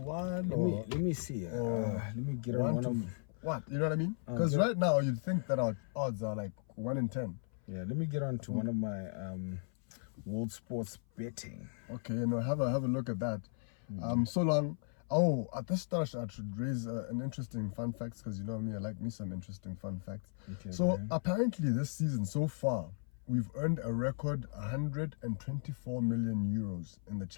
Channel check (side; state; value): right; silent; 54 dB below the other